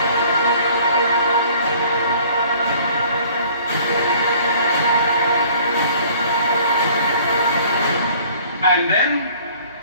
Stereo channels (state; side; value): inverted; both; correlation -0.53